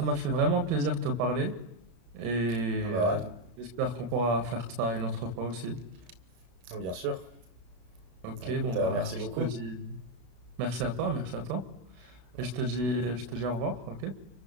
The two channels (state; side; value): late; left; 32 ms